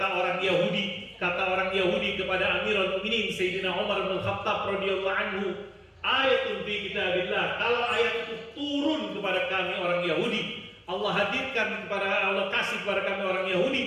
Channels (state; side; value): identical; both; correlation 1.00